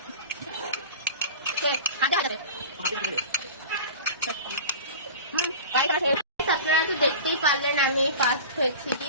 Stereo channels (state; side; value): inverted; both; correlation -0.35